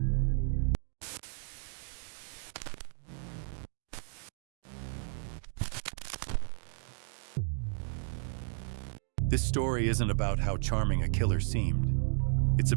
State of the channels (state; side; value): silent; left; 56 dB below the other